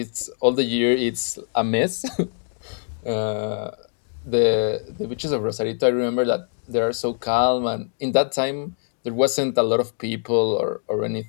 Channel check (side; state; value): right; silent; digital silence